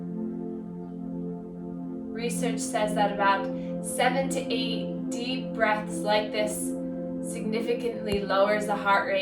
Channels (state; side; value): identical; both; correlation 1.00